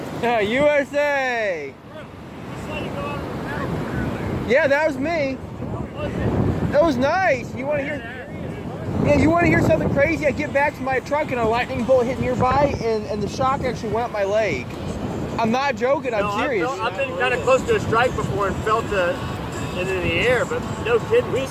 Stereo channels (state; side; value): identical; both; correlation 1.00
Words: Yeah, USA. Yeah, that was me. That was nice. You want to hear? Yeah, you want to hear something crazy? I get back to my truck and a lightning bolt hit nearby, and the shock actually went up my leg. I'm not joking. I'm serious. I've been kind of close to a strike before and felt it in the air, but no kidding. We